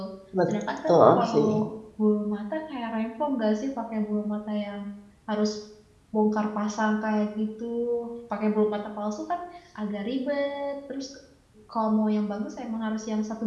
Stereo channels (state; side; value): identical; both; correlation 1.00